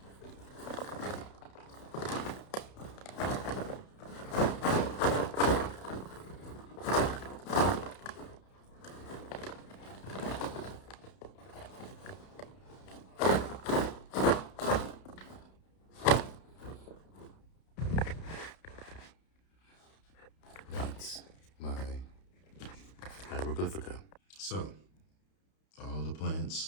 That's my hieroglyphica. So, all the plants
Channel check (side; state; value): right; late; 31 ms